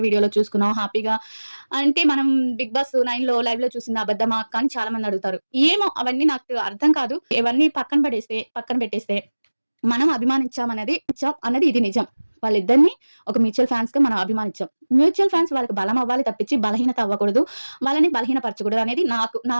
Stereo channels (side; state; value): both; inverted; correlation -1.00